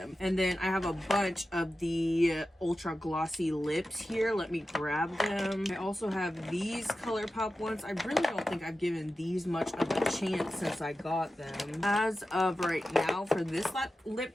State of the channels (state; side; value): normal; both; correlation 0.93